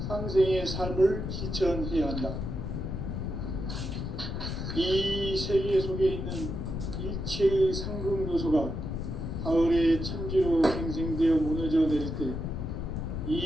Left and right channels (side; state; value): left; noise; rumble, 4 dB below the sound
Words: 상생의 삶을 실천해야 한다. 이 세계 속에 있는 일체의 상극 요소가 가을의 천지로 갱생되어 무너져 내릴 때